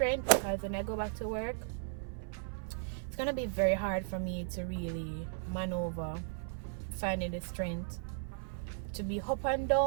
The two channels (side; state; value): left; silent; 54 dB below the other